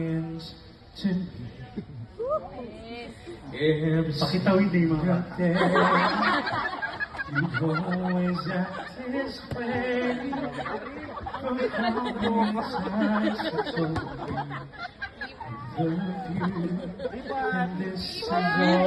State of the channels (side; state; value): both; identical; correlation 1.00